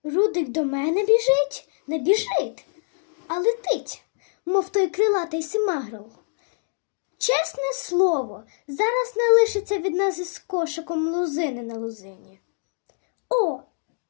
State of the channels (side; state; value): right; silent; digital silence